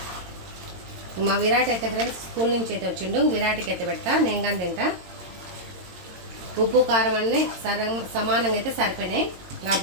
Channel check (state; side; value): late; left; 22 ms